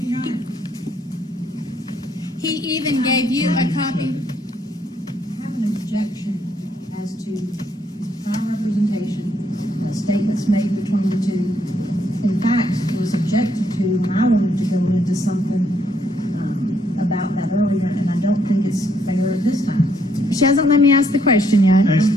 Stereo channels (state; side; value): normal; both; correlation 0.71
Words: he even gave you a copy. I have an objection as to prior representation, statements made between the two. In fact, it was objected to when I wanted to go into something about that earlier, and I don't think it's fair at this time. She hasn't let me ask the question yet. Ask